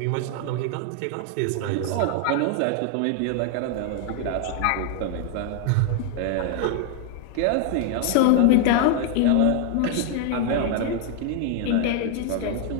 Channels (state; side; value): different; both; correlation 0.00